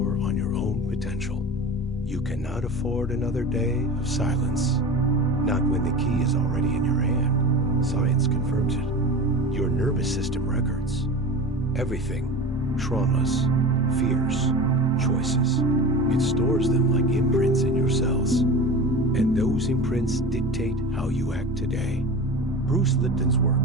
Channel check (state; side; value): normal; both; correlation 0.31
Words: on your own potential. You cannot afford another day of silence. Not when the key is already in your hand. Science confirms it. Your nervous system records everything. Traumas, fears, choices. It stores them like imprints in your cells. And those imprints dictate how you act today. Bruce Lipton's work